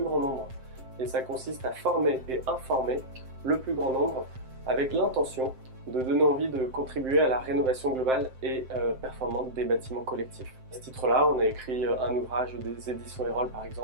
grand nombre et ça consiste à former et informer le plus grand nombre avec l'intention de donner envie de contribuer à la rénovation globale et performante des bâtiments collectifs. À ce titre-là, on a écrit un ouvrage des éditions Erol par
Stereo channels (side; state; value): left; late; 7.7 ms